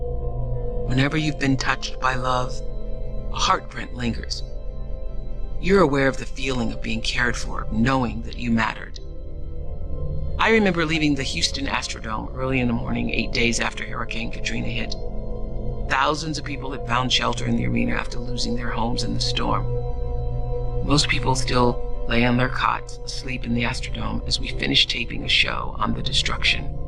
Whenever you've been touched by love, a heartprint lingers. You're aware of the feeling of being cared for, knowing that you mattered. I remember leaving the Houston Astrodome early in the morning, 8 days after Hurricane Katrina hit. Thousands of people had found shelter in the arena after losing their homes in the storm. Most people still lay on their cots, asleep in the Astrodome as we finished taping a show on the destruction.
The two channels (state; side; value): identical; both; correlation 1.00